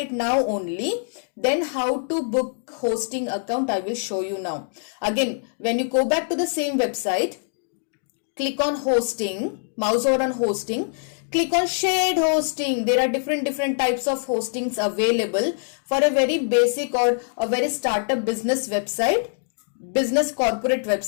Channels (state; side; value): silent; right; digital silence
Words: now only, then how to book hosting account I will show you now. Again, when you go back to the same website, click on hosting, mouse over on hosting, click on shared hosting. There are different types of hostings available for a very basic or a very startup business website, business corporate